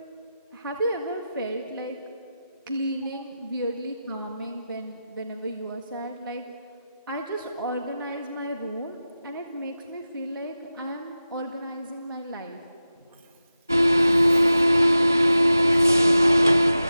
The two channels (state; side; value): inverted; both; correlation -0.94